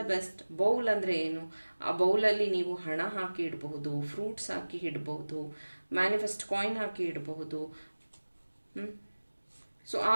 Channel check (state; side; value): inverted; both; correlation -1.00